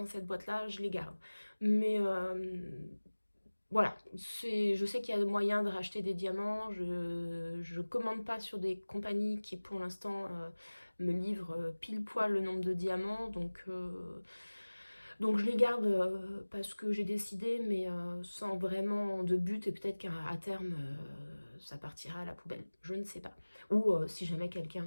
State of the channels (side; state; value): both; inverted; correlation -1.00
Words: cette boîte là je les garde. Mais voilà, je sais qu'il y a moyen de racheter des diamants. Je commande pas sur des compagnies qui pour l'instant me livrent pile poil le nombre de diamants, donc je les garde parce que j'ai décidé, mais sans vraiment de but, et peut-être qu'à terme ça partira à la poubelle, je ne sais pas. Ou si jamais